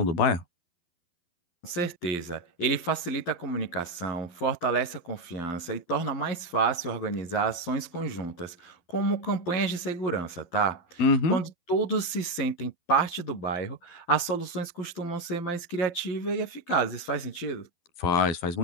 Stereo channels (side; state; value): right; late; 12 ms